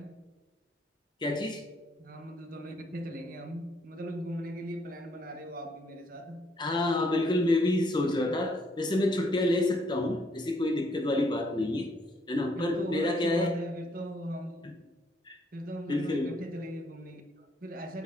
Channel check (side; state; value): both; normal; correlation 0.69